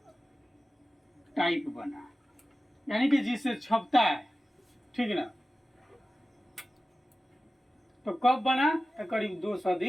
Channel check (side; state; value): both; normal; correlation 0.95